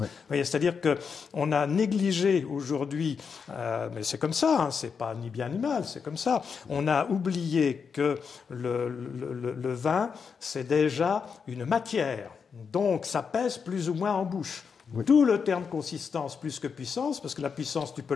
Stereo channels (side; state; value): right; quieter; 6.0 dB